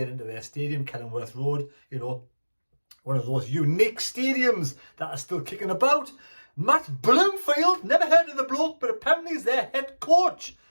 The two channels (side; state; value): both; inverted; correlation -1.00